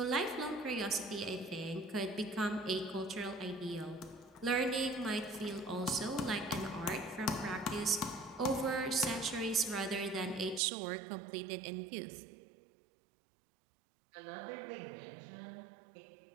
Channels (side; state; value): left; drops out; at 10.6 s